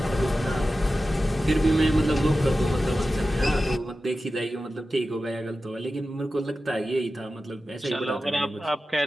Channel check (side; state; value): both; normal; correlation 0.93